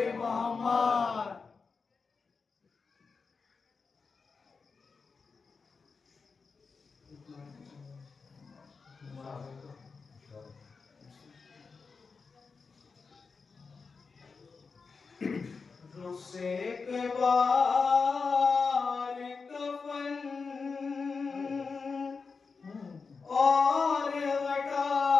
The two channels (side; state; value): right; quieter; 4.8 dB